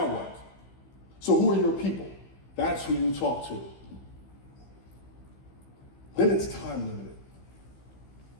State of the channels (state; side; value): late; right; 15 ms